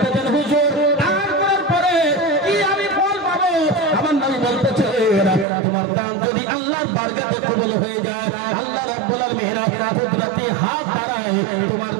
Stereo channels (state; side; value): drops out; left; at 5.5 s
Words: হুজুর দান করার পরে কি আমি ফল পাবো? আমার নবী বলতেছে তোমার দান যদি আল্লাহর বারগাতে কবুল হয়ে যায়, আল্লাহ রাব্বুল আলামিন কুদরতি হাত বাড়ায় তোমার